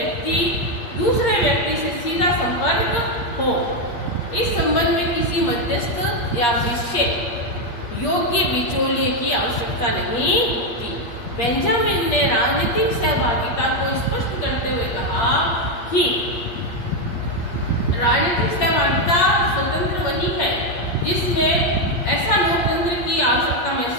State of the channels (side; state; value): right; late; 8.6 ms